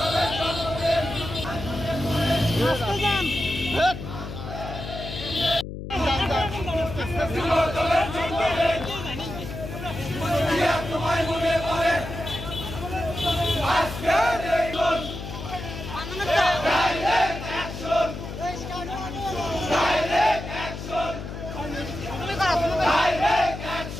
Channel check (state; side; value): noise; left; hum, 8 dB below the sound